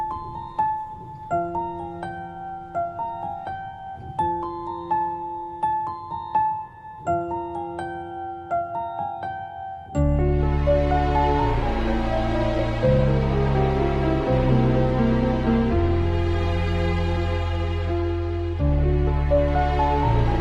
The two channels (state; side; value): identical; both; correlation 1.00